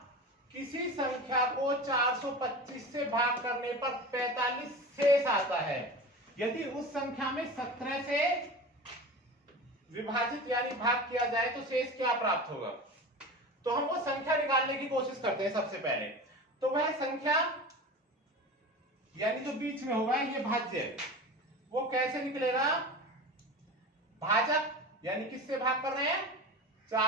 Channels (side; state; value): both; normal; correlation 0.31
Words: किसी संख्या को 425 से भाग करने पर 45 शेष आता है। यदि उस संख्या में 17 से विभाजित यानी भाग किया जाए तो शेष क्या प्राप्त होगा। तो हम वो संख्या निकालने की कोशिश करते हैं सबसे पहले। तो वह संख्या यानी जो बीच में होगा ये भाज्य, वो कैसे निकलेगा, भाजक यानी किससे भाग कर रहे हैं,